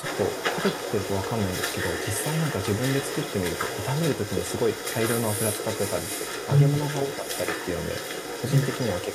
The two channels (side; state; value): both; identical; correlation 1.00